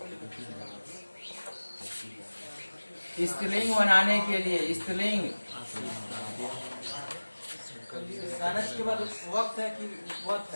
स्त्रीलिंग बनाने के लिए, स्त्रीलिंग के बाद वक्त है कि वक्त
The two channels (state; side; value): inverted; both; correlation -1.00